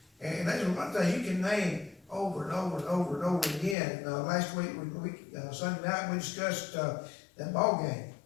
And there's a lot of things you can name over and over and over and over again. Last week, Sunday night, we discussed that ball game.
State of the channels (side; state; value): right; drops out; at 3.8 s